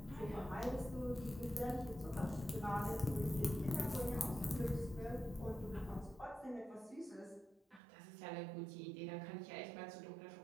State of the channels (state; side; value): drops out; left; at 7.8 s